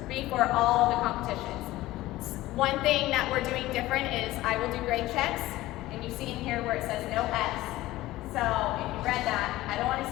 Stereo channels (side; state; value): right; quieter; 17.0 dB